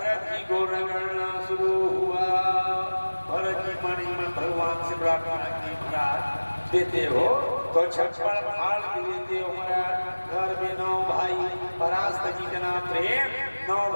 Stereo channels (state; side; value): inverted; both; correlation -1.00